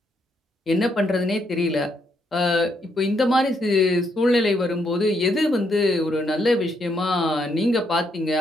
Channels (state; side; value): normal; both; correlation 0.75